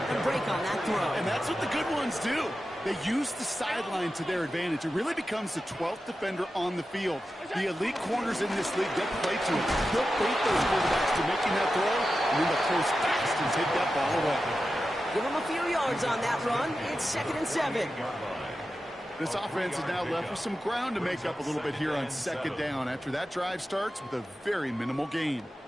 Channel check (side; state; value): both; normal; correlation 0.92